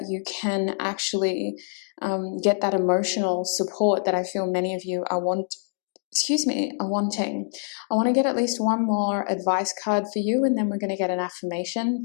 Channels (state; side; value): silent; right; digital silence